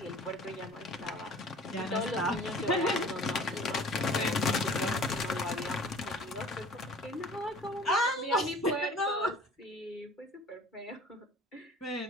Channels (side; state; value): both; normal; correlation 0.47